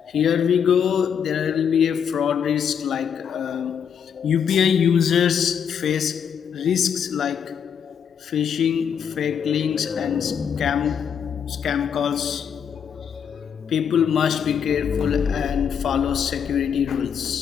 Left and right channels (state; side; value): quieter; right; 7.7 dB